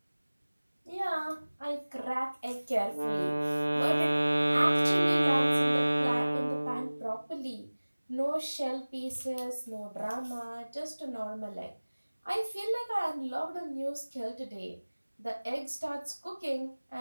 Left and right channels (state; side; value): inverted; both; correlation -1.00